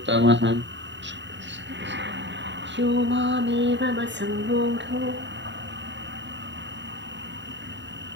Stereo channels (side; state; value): left; late; 0.52 ms